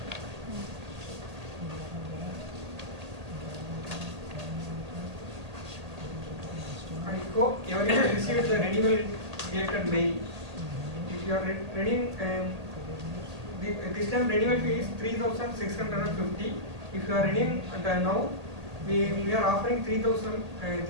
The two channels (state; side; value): late; left; 1.8 ms